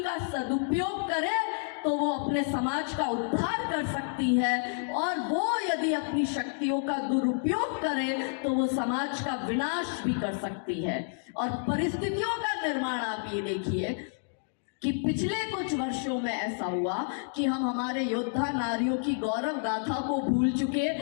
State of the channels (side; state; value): right; silent; digital silence